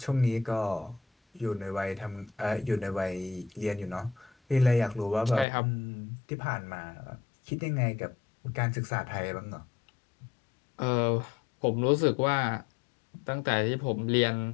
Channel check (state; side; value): drops out; right; at 5.5 s